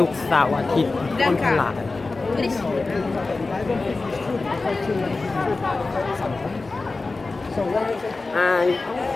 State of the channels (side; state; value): right; quieter; 3.6 dB